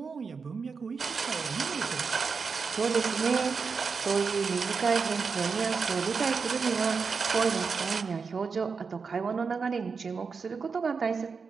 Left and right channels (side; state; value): left; quieter; 5.2 dB